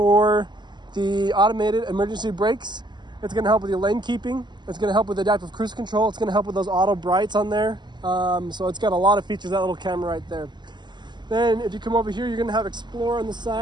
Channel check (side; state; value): left; late; 0.21 ms